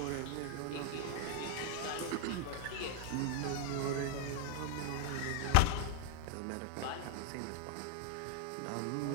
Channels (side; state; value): both; different; correlation 0.00